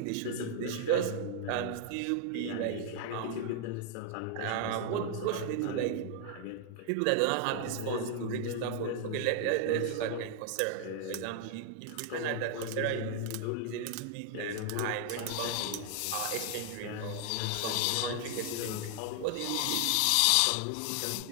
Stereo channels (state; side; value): different; both; correlation 0.00